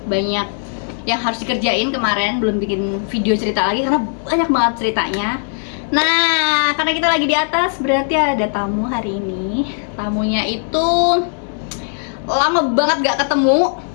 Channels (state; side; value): silent; right; 60 dB below the other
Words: banyak yang harus dikerjain kemarin, belum bikin video cerita lagi karena banyak banget ceritanya. Nah, karena kita lagi di atas, berarti ada tamu hari ini. Tamunya itu lama banget gak ketemu.